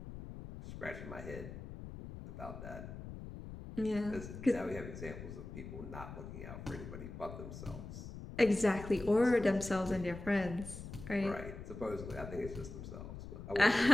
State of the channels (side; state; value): left; noise; rumble, 10 dB below the sound